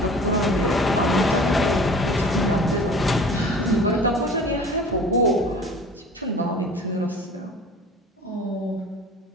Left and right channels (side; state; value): both; normal; correlation 0.44